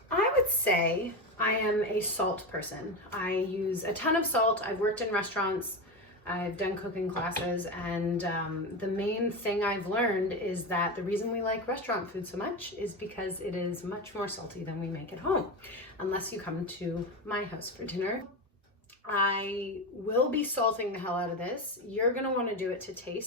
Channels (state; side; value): normal; both; correlation 0.18